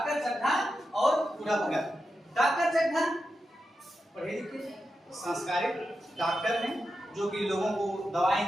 चड्ढा और बूढ़ा भगत। डॉक्टर चड्ढा पढ़े लिखे संस्कारित डॉक्टर हैं जो कि लोगों को दवाएं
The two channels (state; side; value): normal; both; correlation 0.89